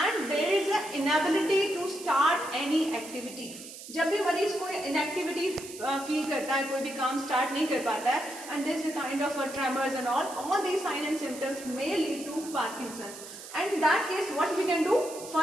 there is a inability to start any activity. जब भी मरीज कोई इनएक्टिविटी फील करता है, कोई भी काम स्टार्ट नहीं कर पाता है, and this is kind of tremors and all these sign and symptoms may lead to Parkinson's. And in that case what we can do,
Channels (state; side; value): noise; right; hiss, 14 dB below the sound